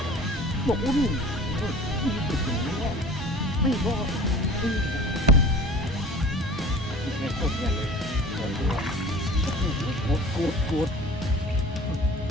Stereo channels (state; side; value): normal; both; correlation 0.42